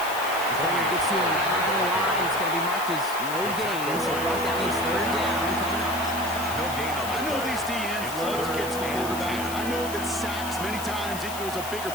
Defender gets to him right on the line. It's going to be marked as no gain. So that means third down coming up. No gain on the I know these DNs love to get to the quarterback. I know that sacks many times equals a bigger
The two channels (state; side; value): noise; left; hiss, 10 dB below the sound